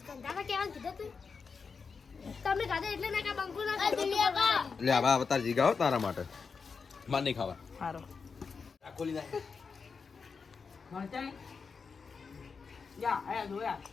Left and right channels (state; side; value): quieter; right; 5.3 dB